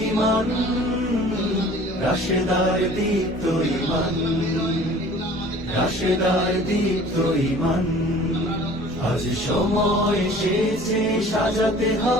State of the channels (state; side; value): normal; both; correlation 0.47